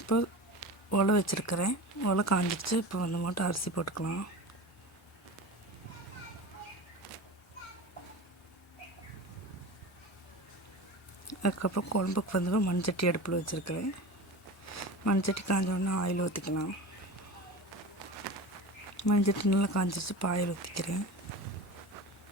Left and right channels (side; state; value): both; normal; correlation 0.31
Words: இப்போ உலை வச்சுருக்கிறேன். உலை காஞ்சிடுச்சு. இப்போ வந்து மட்டும் அரிசி போட்டுக்கலாம். அதுக்கப்புறம் குழம்புக்கு வந்து மண்சட்டி அடுப்பில் வச்சுருக்கிறேன். மண்சட்டி காஞ்சோடனே ஆயில் ஊற்றிக்கலாம். மண்சட்டி நல்லா காஞ்சிச்சு. இப்போ ஆயில் ஊற்றிக்கிறேன்.